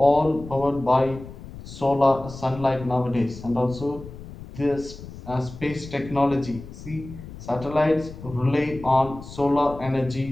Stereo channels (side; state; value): left; noise; rumble, 14 dB below the sound